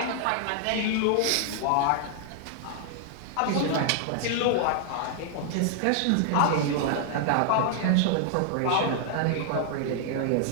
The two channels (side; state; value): both; different; correlation 0.00